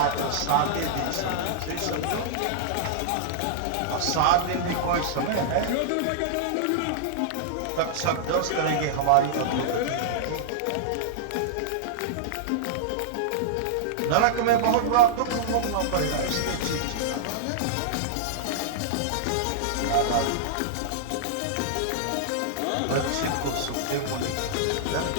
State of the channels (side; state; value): both; different; correlation -0.02